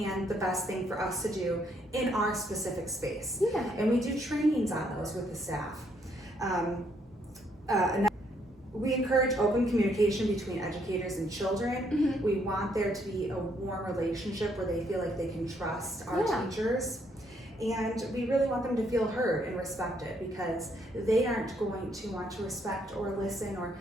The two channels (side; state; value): both; normal; correlation 0.71